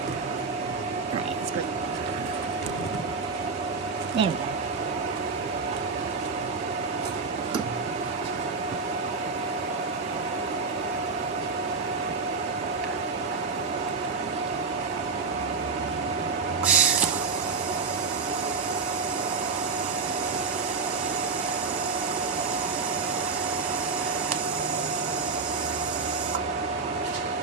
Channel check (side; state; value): left; quieter; 4.6 dB